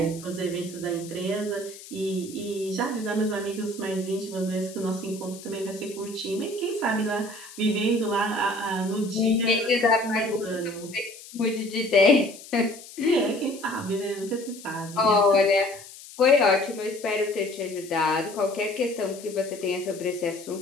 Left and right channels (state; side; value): noise; left; hiss, 17 dB below the sound